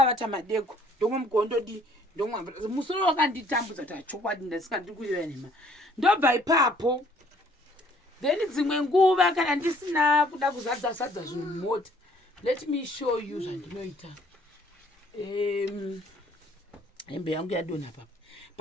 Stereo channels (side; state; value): both; normal; correlation 0.60